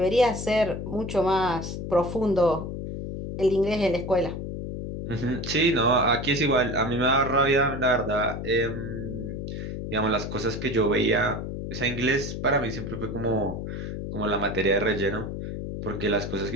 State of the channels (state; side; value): noise; left; hum, 6 dB below the sound